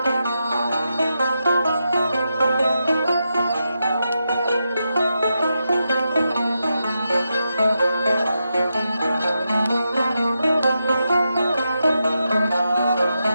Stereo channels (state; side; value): inverted; both; correlation -0.87